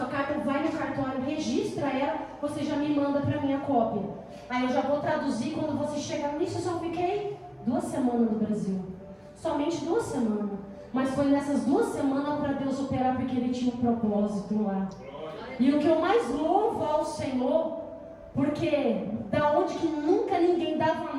carta, vai no cartório, registra ela, você já me manda para mim a cópia. Aí eu já vou traduzir, quando você chegar nisso, eu só fiquei 2 semanas no Brasil. Somente 2 semanas. Mas foi nessas 2 semanas para Deus operar, porque Ele tinha um propósito lá. E o que eu mais louvo ao Senhor, porque da onde que nunca ninguém dava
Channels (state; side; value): identical; both; correlation 1.00